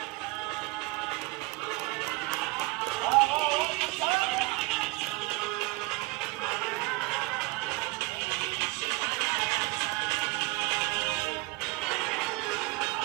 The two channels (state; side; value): quieter; left; 24.7 dB